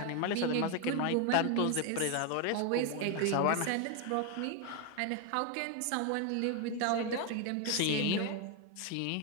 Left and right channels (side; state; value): both; different; correlation 0.01